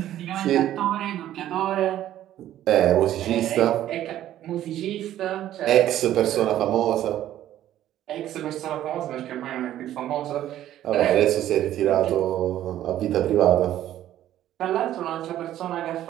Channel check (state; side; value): quieter; left; 12.5 dB